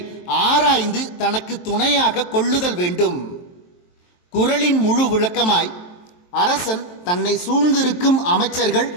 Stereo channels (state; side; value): late; right; 23 ms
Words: ஆராய்ந்து தனக்கு துணையாக கொள்ளுதல் வேண்டும். குறளின் முழு விளக்கமாய்: அரசன் தன்னை சூழ்ந்திருக்கும் அமைச்சர்கள்,